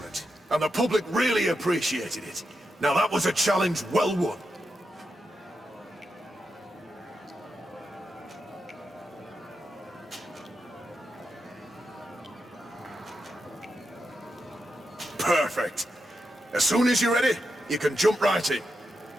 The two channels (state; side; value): normal; both; correlation 0.87